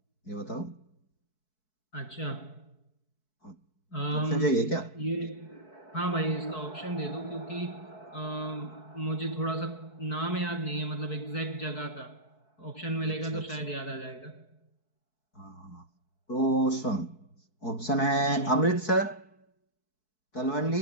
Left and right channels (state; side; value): late; right; 4.6 ms